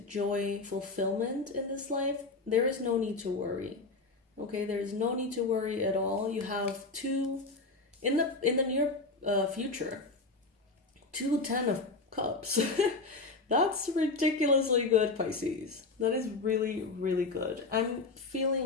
joy, fulfillment in this life, there is no need to worry. Okay, there is no need to worry at all. You have two, in the near future, 2 10 of Cups. That's ridiculously good, Pisces. That is really, really good. I'm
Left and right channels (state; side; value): quieter; right; 3.6 dB